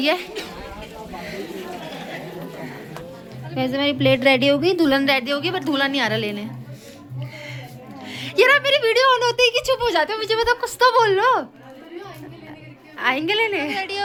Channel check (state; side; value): identical; both; correlation 1.00